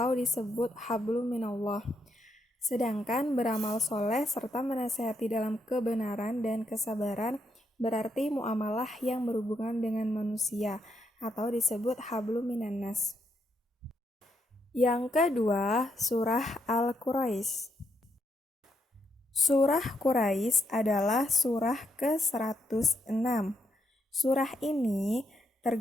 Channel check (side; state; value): both; normal; correlation 0.78